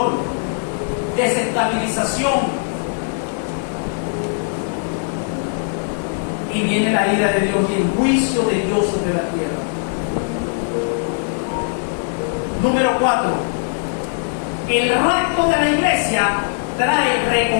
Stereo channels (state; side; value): silent; right; 65 dB below the other